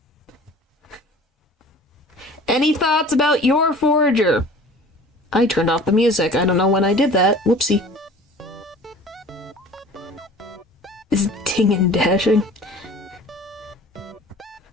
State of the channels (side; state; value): both; normal; correlation 0.45